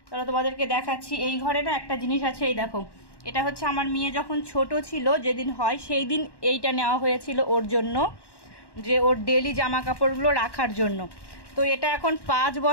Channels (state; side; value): late; right; 1.1 ms